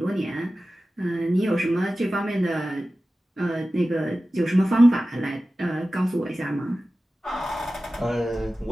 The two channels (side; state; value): both; normal; correlation 0.95